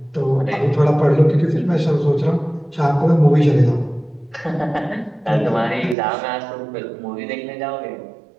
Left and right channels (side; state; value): left; drops out; at 6.0 s